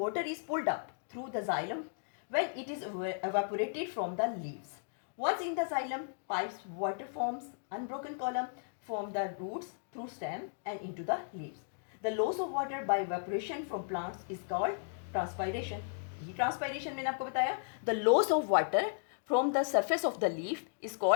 is pulled up through the xylem when it is evaporated from the leaves. Once in the xylem, pipes water forms unbroken column from the roots through stem and into the leaves. The loss of water by evaporation from plants is called transpiration. ये transpiration मैंने आपको बताया। The loss of water from the surface of the leaf is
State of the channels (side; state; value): right; silent; digital silence